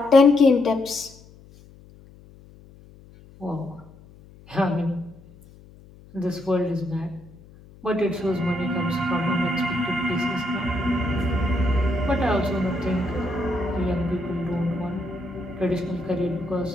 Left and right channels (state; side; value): noise; left; hum, 23 dB below the sound